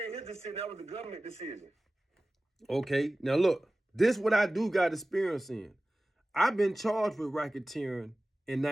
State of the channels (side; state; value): both; normal; correlation 0.97